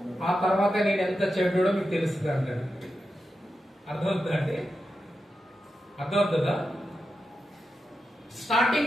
ఆ తర్వాత నేను ఎంత చెడ్డోడో మీకు తెలుస్తుంది అంటాడు. అర్థమవుతుందండి? అర్థమవుతుందా?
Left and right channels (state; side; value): normal; both; correlation 0.89